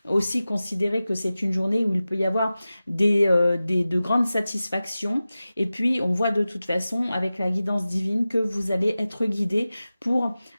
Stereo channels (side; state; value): both; inverted; correlation -0.95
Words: aussi considérer que c'est une journée où il peut y avoir de grandes satisfactions. Et puis, on voit de toute façon, avec la guidance divine, que vous allez être guidé pour,